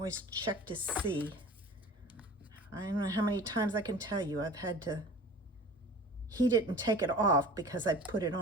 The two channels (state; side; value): normal; both; correlation 0.41